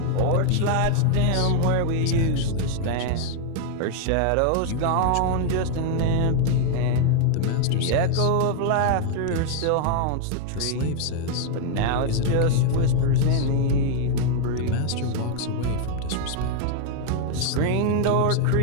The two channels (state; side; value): different; both; correlation 0.00